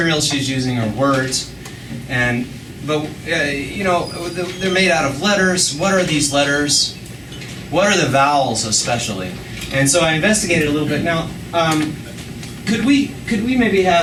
she's using are words, but you know, they're made out of letters. What are these letters? What are the vowels especially? And so I investigated a little bit. Now, could we maybe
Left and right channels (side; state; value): both; identical; correlation 1.00